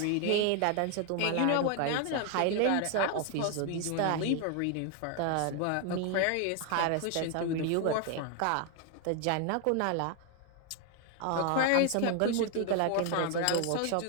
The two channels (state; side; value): different; both; correlation 0.01